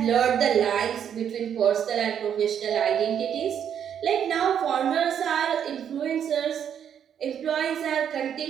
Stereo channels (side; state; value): left; quieter; 8.7 dB